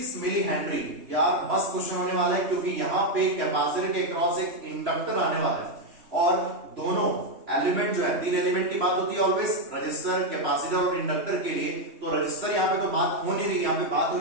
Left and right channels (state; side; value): late; left; 3.2 ms